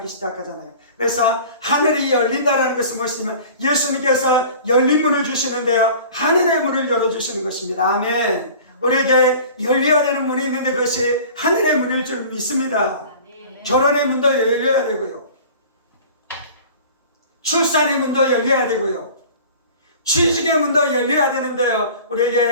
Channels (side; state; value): both; inverted; correlation -0.43